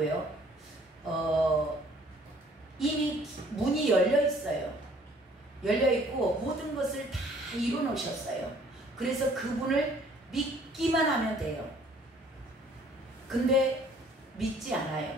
이미 문이 열려 있어요. 열려 있고 모든 것을 다 이뤄 놓으셨어요. 그래서 그분을 믿기만 하면 돼요. 근데 믿지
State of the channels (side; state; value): both; normal; correlation 0.58